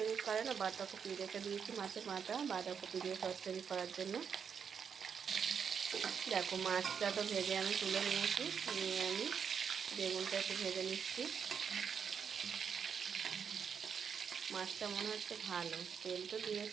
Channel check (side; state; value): left; quieter; 6.9 dB